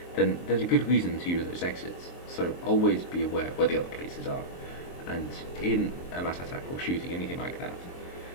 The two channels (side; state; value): right; late; 23 ms